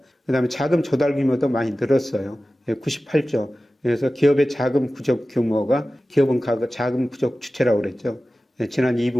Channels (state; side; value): normal; both; correlation 0.96